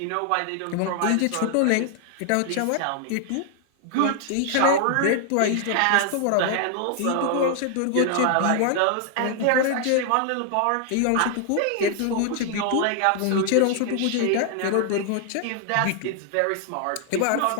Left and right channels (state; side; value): different; both; correlation 0.00